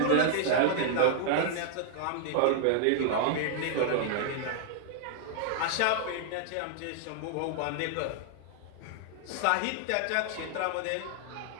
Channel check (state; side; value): different; both; correlation 0.00